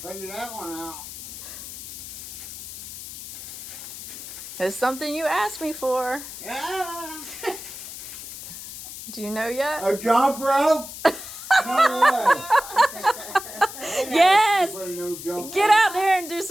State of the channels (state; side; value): noise; left; hiss, 11 dB below the sound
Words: that one out. It's something you asked me for. Yeah. Do you know yet? A jump rope? No Yes! way. Get out there and do